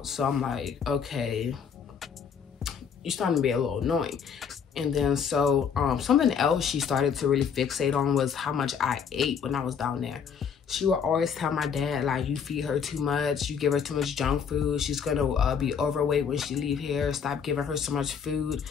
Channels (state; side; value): quieter; right; 6.9 dB